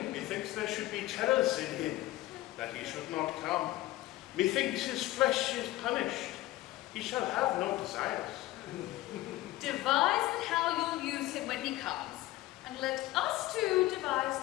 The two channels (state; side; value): quieter; right; 16.9 dB